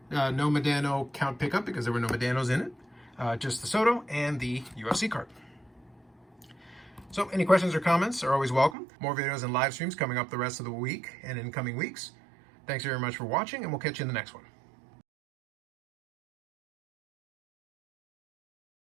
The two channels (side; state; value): left; drops out; at 8.8 s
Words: No Medano count pickup because there were no Medanos in it. Just the Soto and the UFC card. So any questions or comments are always welcome. More videos and live streams coming up the rest of the week and in coming weeks. Thanks very much for watching, and we'll catch you in the next one.